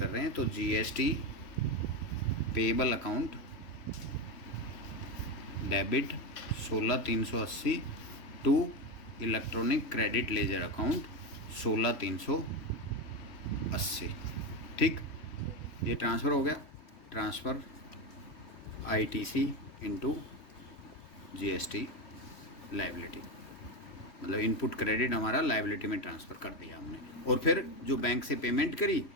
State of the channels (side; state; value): right; late; 3.5 ms